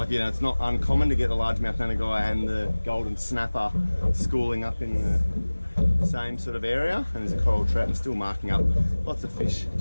you know, it's not uncommon to get the largemouth nanagai and the golden snapper schooling up in the same sort of area. And there's a coral trout and still marking up. Lots of fish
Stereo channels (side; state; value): both; inverted; correlation -1.00